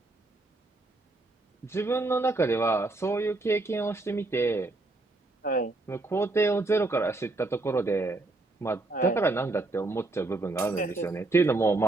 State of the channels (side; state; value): left; quieter; 3.0 dB